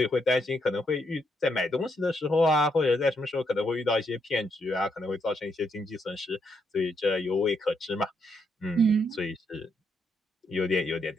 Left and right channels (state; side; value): normal; both; correlation 0.77